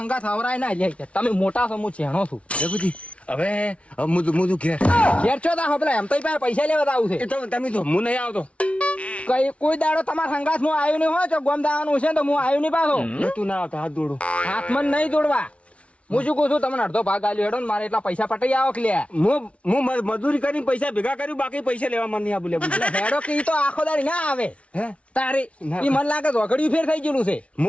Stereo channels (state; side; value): late; right; 0.062 ms